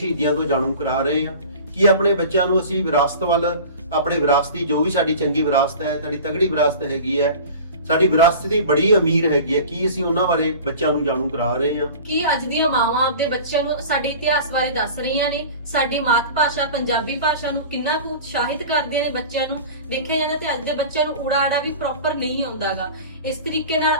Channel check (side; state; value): both; inverted; correlation -0.38